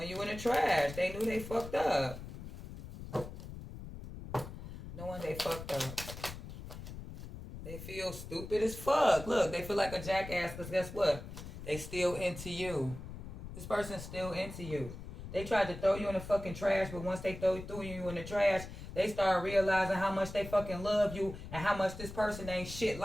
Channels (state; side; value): noise; left; rumble, 11 dB below the sound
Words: you in the trash. They knew they fucked up. Knowing they fucked up. They feel stupid as fuck. Look, they feel like a jackass because guess what? They still into you. This person's still into you. They tried to throw you in the fucking trash, but once they threw you in the trash, they started realizing how much they fucking love you and how much this person ain't shit